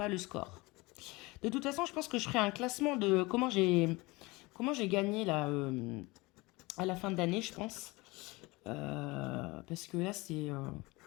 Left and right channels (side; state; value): right; quieter; 23.2 dB